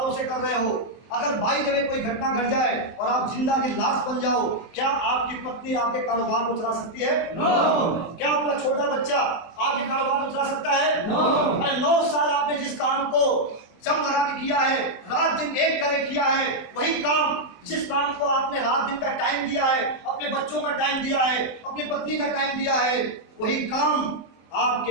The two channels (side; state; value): right; late; 24 ms